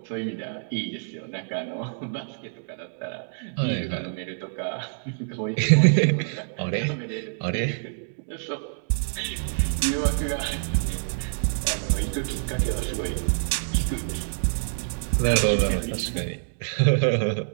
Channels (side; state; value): left; silent; digital silence